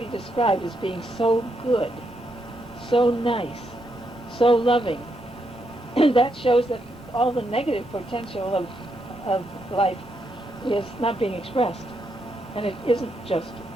described as being so good, so nice, so loving, that shows that all the negative potential of life is not being expressed, and it isn't just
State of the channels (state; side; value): normal; both; correlation 0.79